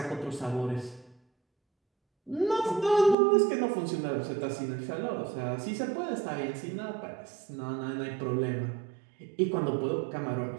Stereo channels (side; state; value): left; drops out; at 3.2 s